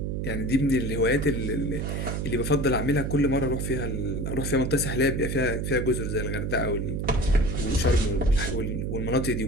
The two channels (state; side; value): noise; right; hum, 2 dB below the sound